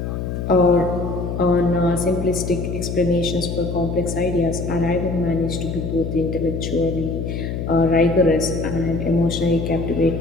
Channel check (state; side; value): noise; left; hum, 4 dB below the sound